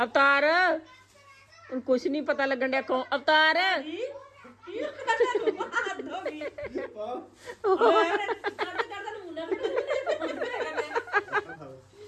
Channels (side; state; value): both; identical; correlation 1.00